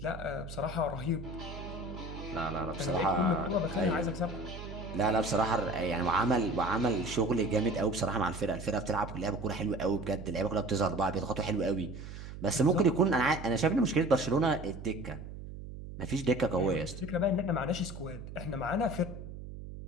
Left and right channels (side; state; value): right; noise; hum, 11 dB below the sound